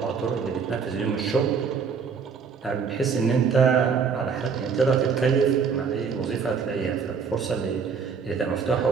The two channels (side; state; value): left; quieter; 6.0 dB